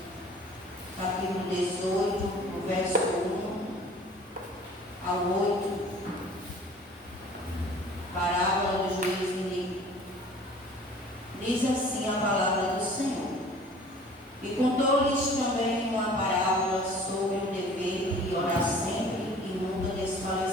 Capítulo 18, do verso 1 ao 8. Parábola do juiz iníquo. Diz assim a palavra do Senhor. E contou-lhes também uma parábola sobre o dever de orar sempre e nunca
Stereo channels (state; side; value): normal; both; correlation 0.48